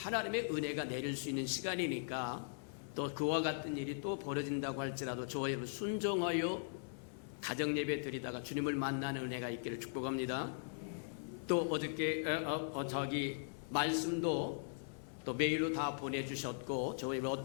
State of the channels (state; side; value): silent; right; 51 dB below the other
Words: 은혜가 내릴 수 있는 시간이니까 또 그와 같은 일이 또 벌어진다고 할지라도 저와 여러분 순종하여 가정예배 드리다가 주님을 만나는 은혜가 있기를 축복합니다. 또 어저께 말씀도 또 메일로 다 보내주셨고 저희